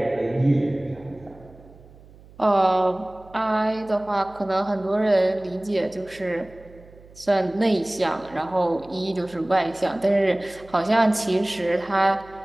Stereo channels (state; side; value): noise; right; hum, 23 dB below the sound